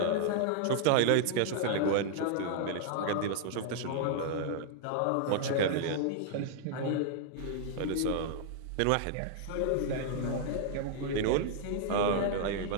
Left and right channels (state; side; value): different; both; correlation -0.01